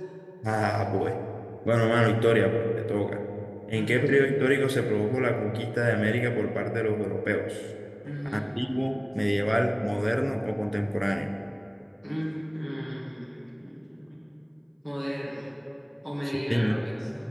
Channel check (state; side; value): identical; both; correlation 1.00